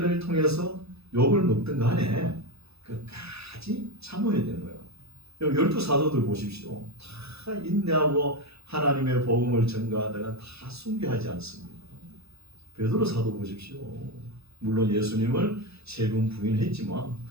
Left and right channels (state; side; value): late; left; 0.78 ms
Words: 통해서 욕을 먹든 간에 끝까지 참아야 되는 거예요. 12 사도들 보십시오. 다 인내하고 하나님의 복음을 전가하다가 다 순교하지 않습니다. 베드로 사도 보십시오. 물론 예수님을 3번 부인했지만